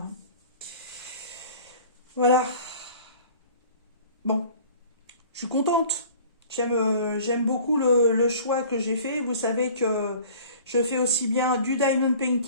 Voilà. Bon, je suis contente. J'aime beaucoup le choix que j'ai fait. Vous savez que je fais aussi bien du diamond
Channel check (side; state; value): both; inverted; correlation -0.46